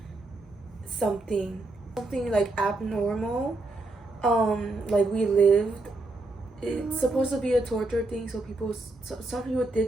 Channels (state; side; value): quieter; left; 3.0 dB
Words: something like abnormal. Like we lived, it's supposed to be a torture thing, so some people